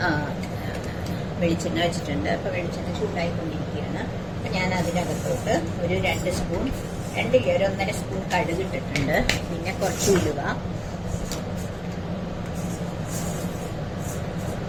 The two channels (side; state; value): both; identical; correlation 1.00